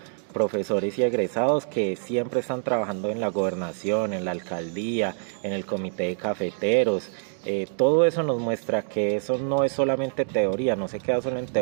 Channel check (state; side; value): silent; left; digital silence